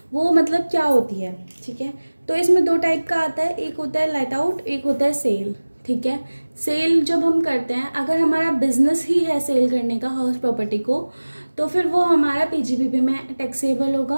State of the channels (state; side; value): inverted; both; correlation -1.00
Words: वो मतलब क्या होती है, ठीक है। तो इसमें दो टाइप का आता है, एक होता है लेट आउट, एक होता है सेल, ठीक है। सेल जब हम करते हैं, अगर हमारा बिजनेस ही है सेल करने का हाउस प्रॉपर्टी को, तो फिर वो हमारा पीजीबीपी में टैक्सेबल